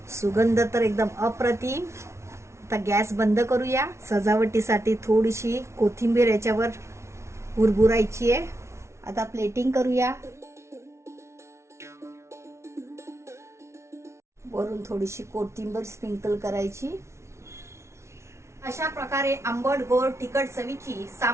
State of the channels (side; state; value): left; late; 0.13 ms